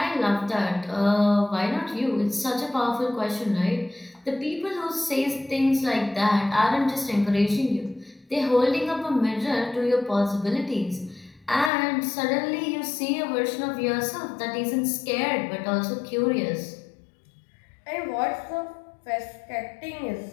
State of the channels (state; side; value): drops out; right; at 11.7 s